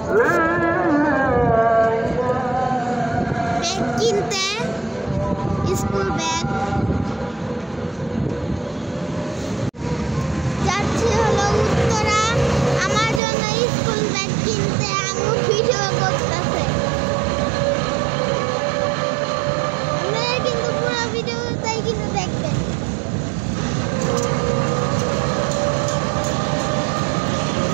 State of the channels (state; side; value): drops out; left; at 13.2 s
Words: ব্যাগ কিনতে, স্কুল ব্যাগ। যাচ্ছি হলো উত্তরা আমার জন্য স্কুল ব্যাগ কিনতে। আম্মু ভিডিও করতেছে। আপনারা কিন্তু পুরো ভিডিওটাই কিন্তু দেখবেন।